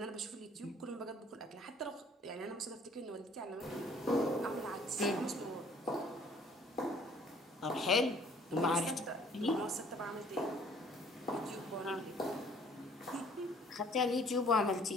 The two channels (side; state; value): both; normal; correlation 0.57